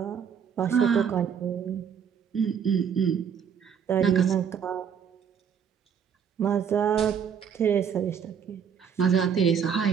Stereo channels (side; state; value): left; quieter; 7.5 dB